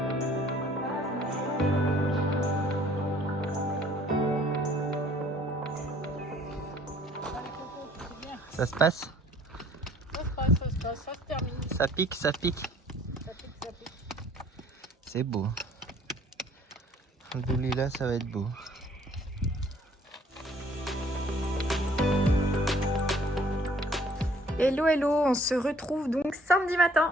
Ça se passe? Ça se termine. Ça pique, ça pique. Ça pique. C'est beau. Alhamdoulilah, ça va être beau. Hello, on se retrouve donc samedi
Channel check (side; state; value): both; normal; correlation 0.58